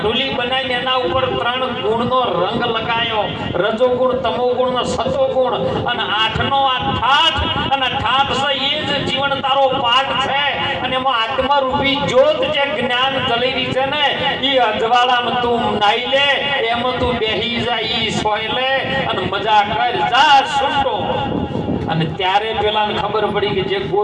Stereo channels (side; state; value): both; identical; correlation 1.00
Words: બનાવીને એના ઉપર 3 ગુણનો રંગ લગાયો. રજો ગુણ, તમો ગુણ ને સતો ગુણ અને 8નો આ ઠાઠ. અને ઠાઠ છે એ જ જીવન તારો પાઠ છે. અને એમાં આત્મરૂપી જ્યોત જે જ્ઞાન જલેરી છે ને એ અજવાળામાં તું નાઈ લે, એમાં તું બેહી જા, ઈ સોય લે અને મજા કર જા છૂટો. અને ત્યારે પેલાને ખબર પડી કે જે